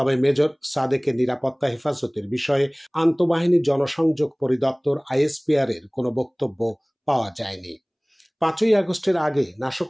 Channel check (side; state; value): both; identical; correlation 1.00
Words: মেজর সাদেকের নিরাপত্তা হেফাজতের বিষয়ে আন্তঃবাহিনী জনসংযোগ পরিদপ্তর আইএসপিআর এর কোনো বক্তব্য পাওয়া যায়নি। ৫ই আগস্টের আগে